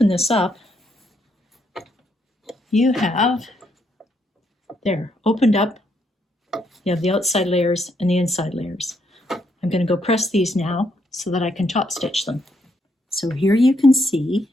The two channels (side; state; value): both; normal; correlation 0.75